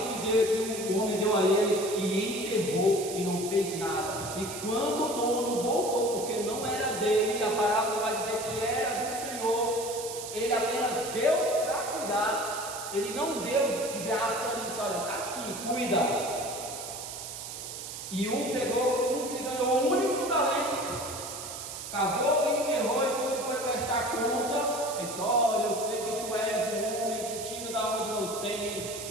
que o homem deu a ele e enterrou e não fez nada. E quando o dono voltou, porque não era dele, a parábola vai dizer que era do Senhor, ele apenas deu para cuidar. Ele não deu de graça e disse: olha, está aqui, cuida. E um que ganhou o único talento, cavou e enterrou, e quando foi prestar conta, ele disse: olha, eu sei que tu és um homem que tira da onde não tem,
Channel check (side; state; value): right; noise; hiss, 9 dB below the sound